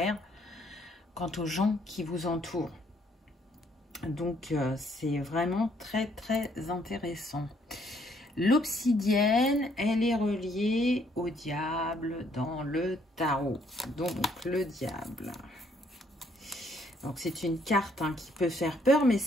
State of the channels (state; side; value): normal; both; correlation 0.68